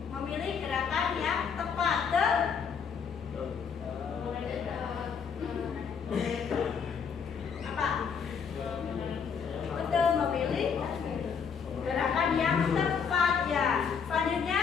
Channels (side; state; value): right; quieter; 6.5 dB